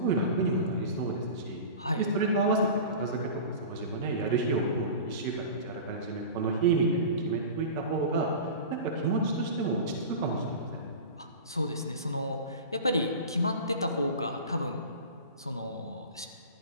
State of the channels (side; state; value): both; inverted; correlation -0.33